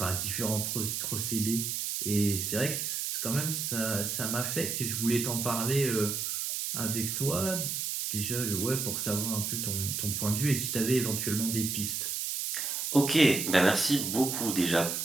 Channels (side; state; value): right; noise; hiss, 2 dB below the sound